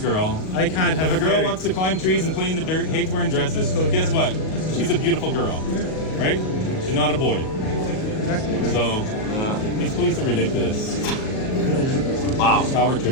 I can't have If a girl theory. wants to climb trees and play in the dirt, hates wearing dresses, guess what? She's a beautiful girl, right? She's not a boy. So these police are ridiculous. Wow. Power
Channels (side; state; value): right; late; 38 ms